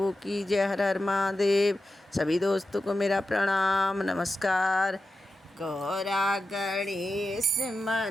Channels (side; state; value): both; normal; correlation 0.91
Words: की जय। हर हर महादेव। सभी दोस्तों को मेरा प्रणाम नमस्कार। गौरा गणेश